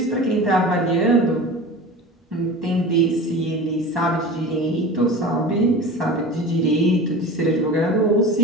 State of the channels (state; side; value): normal; both; correlation 0.34